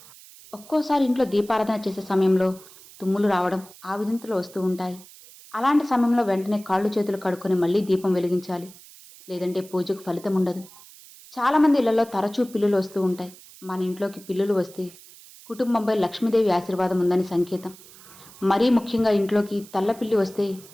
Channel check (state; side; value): noise; right; hiss, 21 dB below the sound